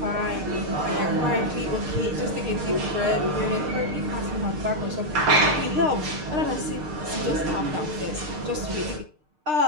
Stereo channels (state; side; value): late; left; 6.6 ms